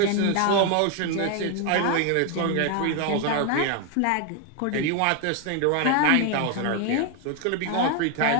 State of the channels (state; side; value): different; both; correlation 0.01